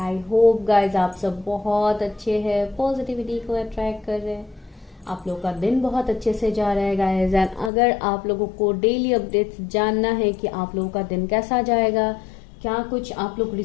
hope guys आप सब बहुत अच्छे हैं, पॉजिटिविटी को अट्रैक्ट कर रहे हैं, आप लोग का दिन बहुत अच्छे से जा रहा है गाइज। एंड अगर आप लोगों को डेली अपडेट्स जानना है कि आप लोगों का दिन कैसा जाएगा, क्या कुछ आप लोग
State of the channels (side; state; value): right; drops out; at 7.7 s